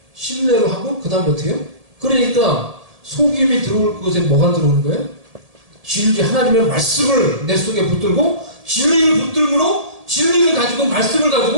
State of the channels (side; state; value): left; late; 1.7 ms